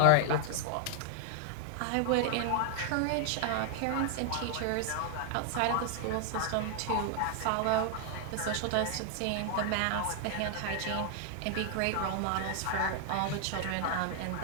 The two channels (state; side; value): different; both; correlation 0.00